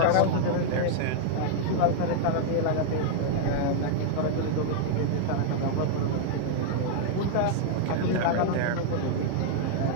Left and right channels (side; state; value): both; different; correlation -0.01